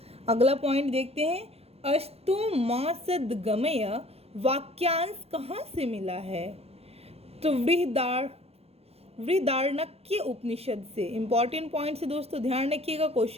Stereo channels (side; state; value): left; late; 0.29 ms